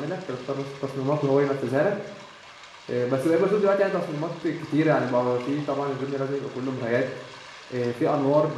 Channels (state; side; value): identical; both; correlation 1.00